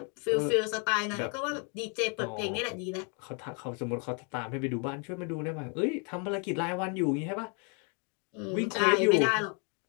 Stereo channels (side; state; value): right; quieter; 37.1 dB